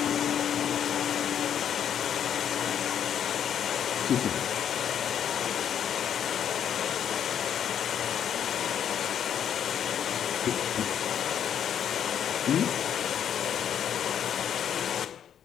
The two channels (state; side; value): quieter; right; 9.1 dB